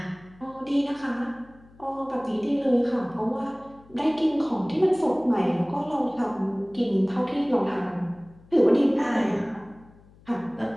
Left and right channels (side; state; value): left; noise; hum, 26 dB below the sound